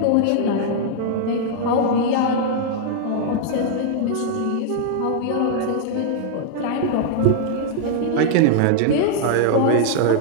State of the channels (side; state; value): both; different; correlation -0.01